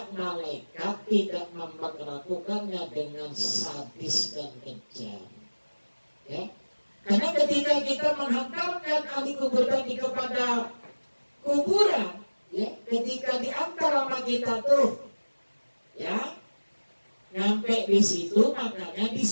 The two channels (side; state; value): both; inverted; correlation -1.00